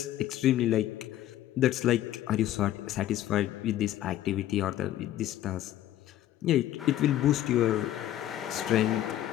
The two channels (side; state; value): right; quieter; 12.9 dB